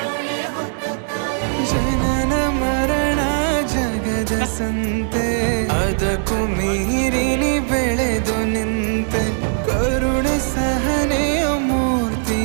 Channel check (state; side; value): silent; left; 66 dB below the other